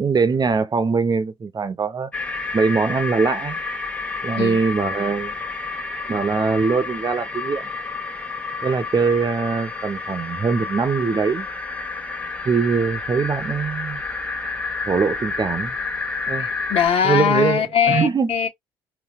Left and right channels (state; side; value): normal; both; correlation 0.60